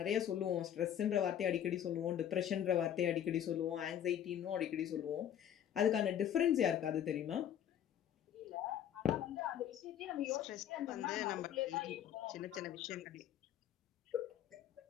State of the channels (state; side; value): quieter; right; 10.1 dB